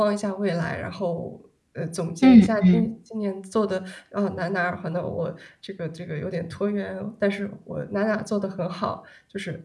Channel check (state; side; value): identical; both; correlation 1.00